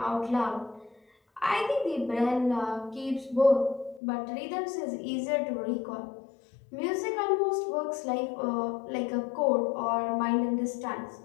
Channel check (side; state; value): right; drops out; at 4.0 s